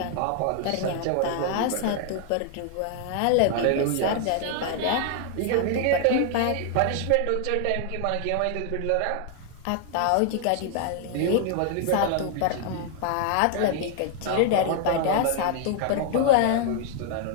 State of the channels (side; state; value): both; different; correlation 0.00